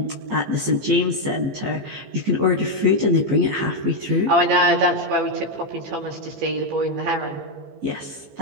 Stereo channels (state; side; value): late; left; 15 ms